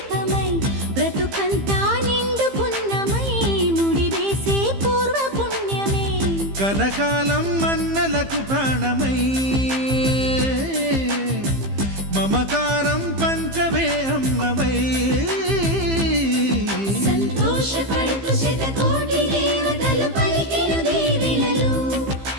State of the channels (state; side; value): late; left; 15 ms